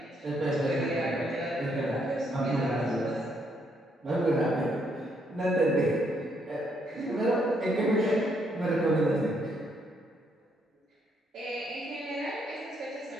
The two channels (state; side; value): normal; both; correlation 0.73